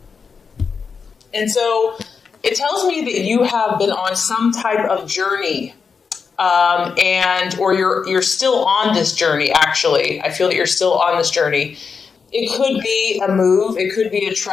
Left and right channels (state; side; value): quieter; right; 5.6 dB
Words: And so it tells me that you have been on some type of journey, or you're still on this journey, actually. I feel that you're still on this journey. It could be a move, it could be a